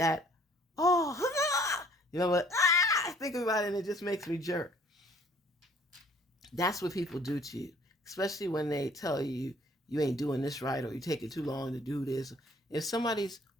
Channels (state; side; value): normal; both; correlation 0.57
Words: you know what? Think about it and it just makes me jerk. That's what people do to you, especially when they tell you you ain't doing this right or you taking too long to do this. If somebody's